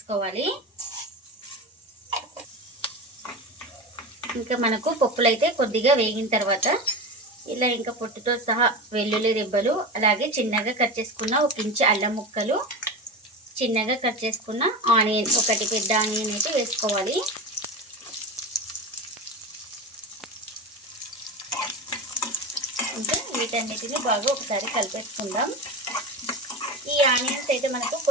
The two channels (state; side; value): normal; both; correlation 0.24